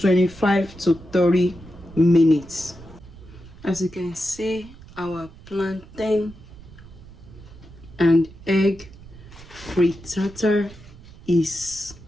to 30 minutes. As you can see, our plantain and egg frittata is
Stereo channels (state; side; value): noise; right; rumble, 19 dB below the sound